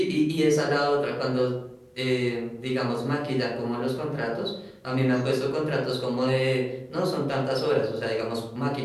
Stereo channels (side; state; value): both; identical; correlation 1.00